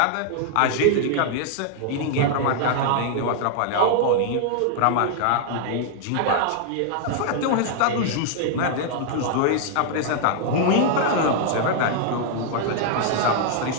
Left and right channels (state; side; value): different; both; correlation 0.00